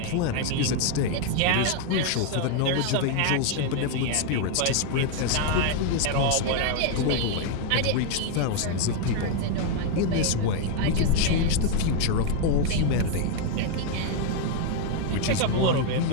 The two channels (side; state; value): both; different; correlation 0.00